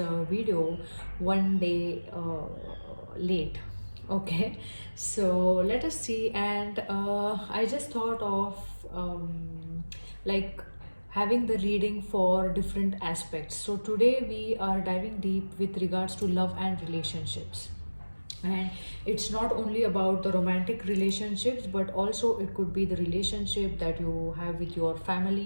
video one day late. Okay, so let us see. And I just thought of like having the reading for different aspects. So today we are diving deep with regards to love and relationships. And it's not only about the romantic relationships, but also it could be the relationship that you have with your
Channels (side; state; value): both; inverted; correlation -1.00